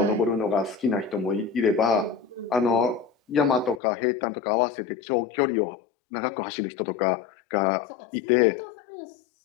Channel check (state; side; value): drops out; right; at 3.8 s